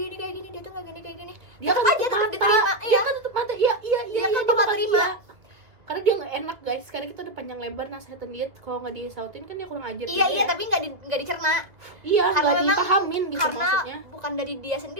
gini, dia tuh kayak gini. Dia tetap kan aja tetap diterima. Dia kan tetap mata. Iya dia kan bakal terima. Iya. Karena dia nggak enak, guys. Sekarang kita udah panjang lebar nasihatin dia, kalau nggak disautin kan dia kurang ajar. Iya tapi nggak dicerna. Iya, karena nggak memang dipahamin gitu karena maksudnya. bukan dari dia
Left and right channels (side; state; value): left; late; 1.8 ms